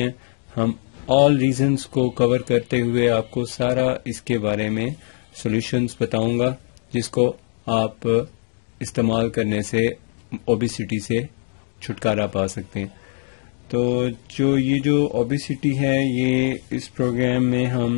ہم آل ریزنز کو کور کرتے ہوئے آپ کو سارا اس کے بارے میں سولوشنز بتاؤں گا، جس کو آپ استعمال کرنے سے اوبیسٹی سے چھٹکارا پا سکتے ہیں۔ تو یہ جو اوبیسٹی ہے، یہ اس پروگرام میں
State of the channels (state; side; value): silent; right; 63 dB below the other